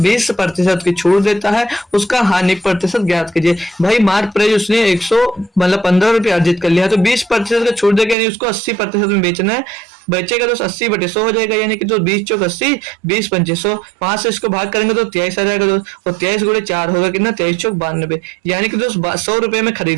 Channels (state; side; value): drops out; left; at 8.2 s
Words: 20% की छूट देता है, उसका हानि प्रतिशत ज्ञात कीजिए। भाई मार्क प्राइस उसने 100 मतलब 15 रुपये अर्जित कर लिया, तो 20% का छूट देगा, यानी उसको 80% में बेचना है। बचेगा तो 80/100 हो जाएगा, यानी कि तो 20 चौक 80, 20 पंचे 100, 5 से इसको भाग करेंगे तो 23 आ जाएगा दोस्त, और 23 गुणे 4 होगा कितना 23 चौक 92, यानी कि दोस्त 100 रुपए में